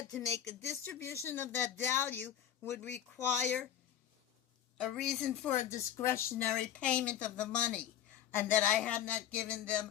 to make a distribution of that value would require a reason for a discretionary payment of the money, and that I had not given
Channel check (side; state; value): right; quieter; 10.4 dB